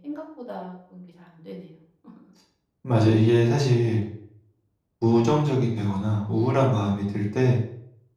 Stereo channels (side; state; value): both; identical; correlation 1.00